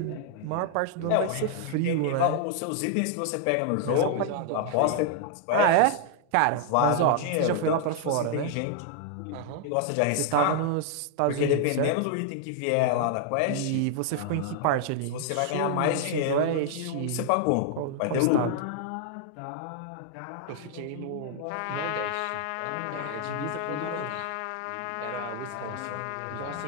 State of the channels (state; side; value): different; both; correlation 0.00